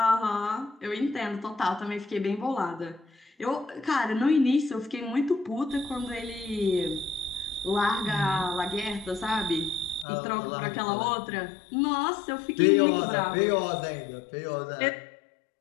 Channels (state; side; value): drops out; right; at 10.1 s